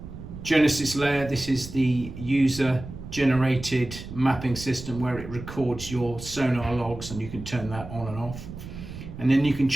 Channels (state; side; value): noise; right; rumble, 12 dB below the sound